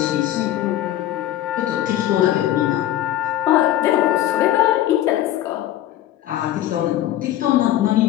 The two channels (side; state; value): right; quieter; 13.0 dB